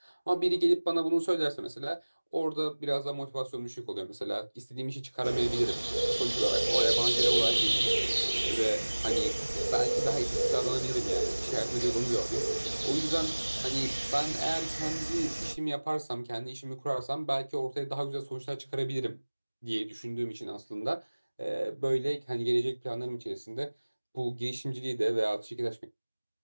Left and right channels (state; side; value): inverted; both; correlation -1.00